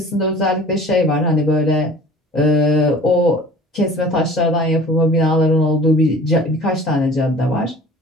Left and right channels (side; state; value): both; normal; correlation 0.45